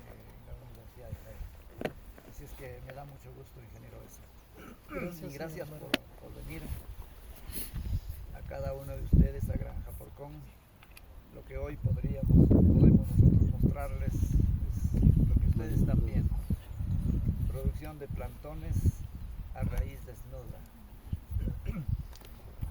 la Universidad de Jaén. Así es que me da mucho gusto, ingeniero, eso. Y gracias por venir a cada uno de ustedes a Granja Porcón. Lo que hoy podemos nosotros mostrarles es lo que ustedes están viendo: producción de plantones a raíz desnuda.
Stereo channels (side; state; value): both; identical; correlation 1.00